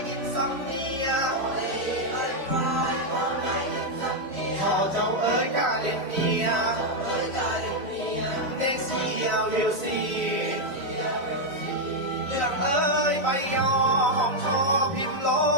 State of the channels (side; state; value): left; late; 3.5 ms